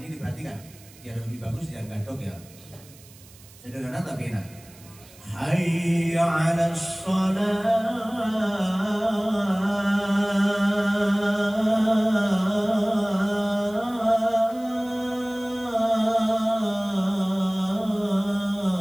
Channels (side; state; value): right; noise; hiss, 23 dB below the sound